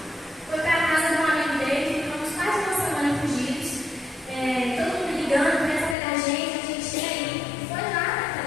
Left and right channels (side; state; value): right; drops out; at 6.0 s